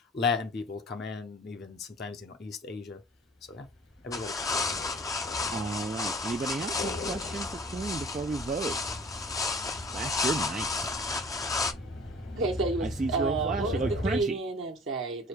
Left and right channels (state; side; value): normal; both; correlation 0.47